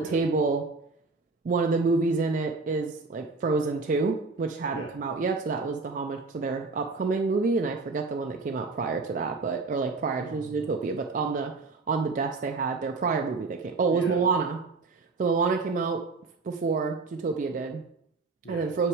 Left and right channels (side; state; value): left; quieter; 3.9 dB